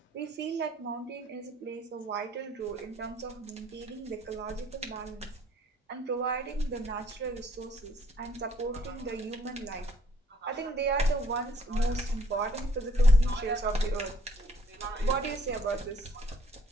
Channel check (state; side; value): normal; both; correlation 0.62